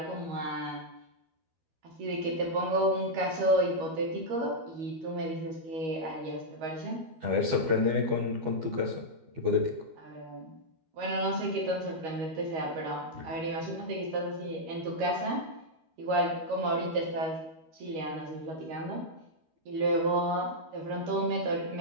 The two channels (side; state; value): left; late; 13 ms